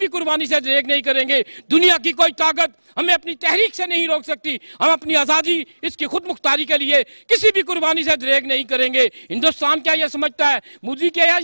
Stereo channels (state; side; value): inverted; both; correlation -1.00